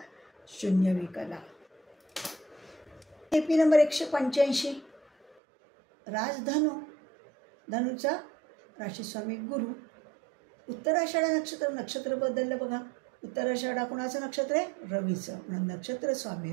0 विकला. KP number 185. राजधनु, धनुचा राशीस्वामी गुरु. उत्तराषाढा नक्षत्र बदललं बघा. उत्तराषाढा कोणाचं नक्षत्र आहे? रवीचं, म्हणून नक्षत्र स्वामी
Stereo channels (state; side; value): drops out; left; at 5.4 s